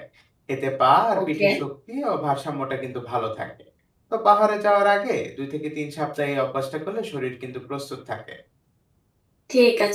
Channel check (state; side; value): identical; both; correlation 1.00